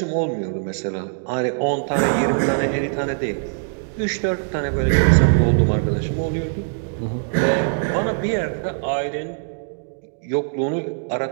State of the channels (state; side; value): silent; left; digital silence